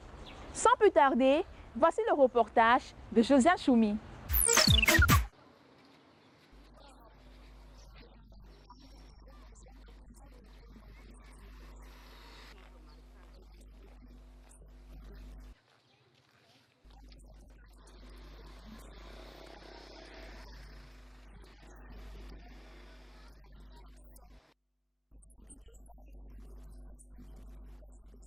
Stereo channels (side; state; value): both; identical; correlation 1.00